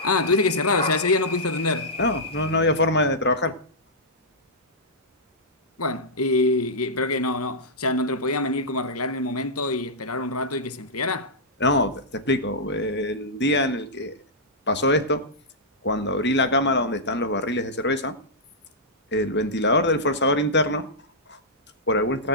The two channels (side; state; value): both; normal; correlation -0.12